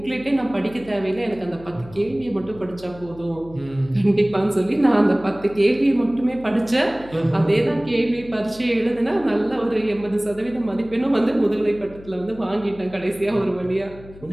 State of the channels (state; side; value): noise; left; hum, 19 dB below the sound